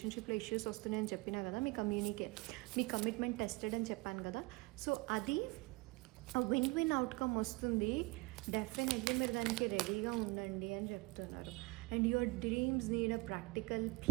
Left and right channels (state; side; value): quieter; left; 24.7 dB